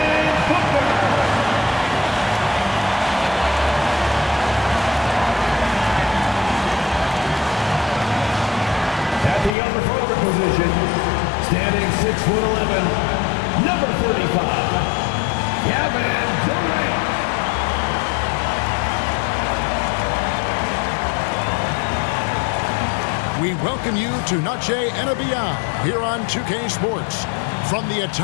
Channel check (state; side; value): drops out; right; at 9.6 s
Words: Booker. At the other forward position, standing 6'11", number 35, Kevin Durant. We welcome you to Noche and Beyond here on 2K Sports. From the